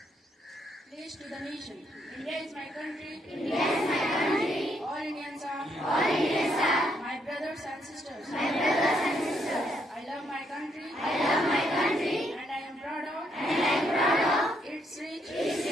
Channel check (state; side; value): normal; both; correlation 0.74